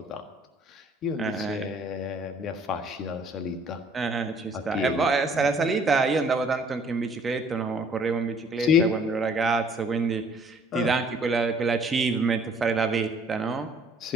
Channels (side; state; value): both; normal; correlation 0.58